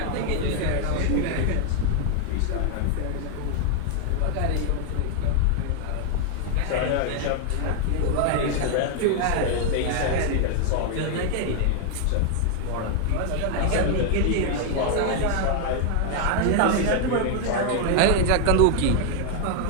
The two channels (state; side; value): different; both; correlation 0.00